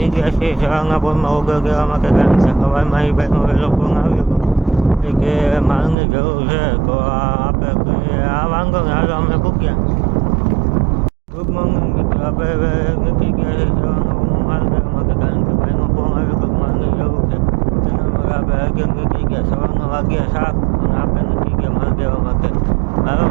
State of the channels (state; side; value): drops out; left; at 6.0 s